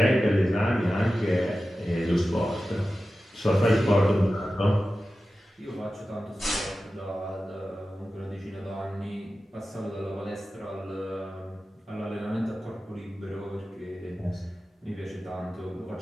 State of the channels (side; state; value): both; normal; correlation 0.94